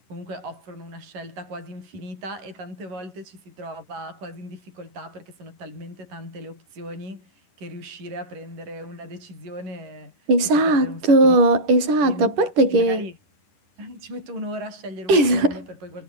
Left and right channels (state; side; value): late; left; 10 ms